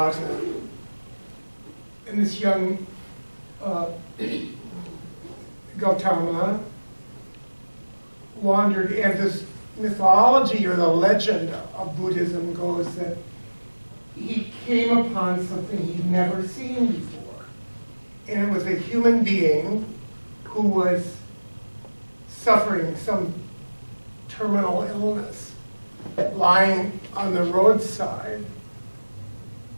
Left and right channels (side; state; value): both; inverted; correlation -1.00